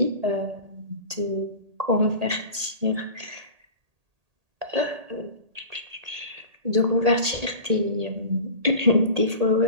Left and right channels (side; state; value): left; late; 1.8 ms